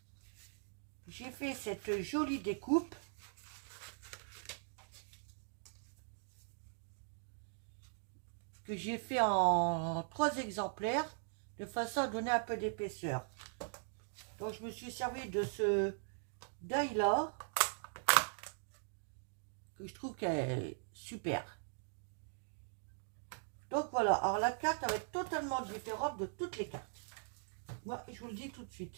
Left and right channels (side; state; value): left; silent; digital silence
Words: j'ai fait cette jolie découpe. Que j'ai fait en 3 exemplaires de façon à donner un peu d'épaisseur. Donc je me suis servi de ce die là que je trouve qu'elle est super. Donc voilà, alors la carte va être totalement différente de toutes les cartes. Moi je vous le dis tout de suite.